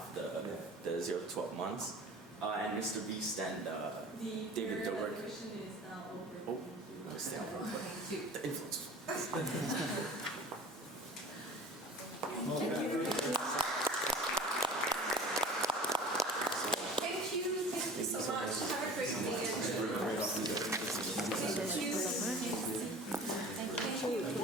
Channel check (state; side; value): normal; both; correlation 0.41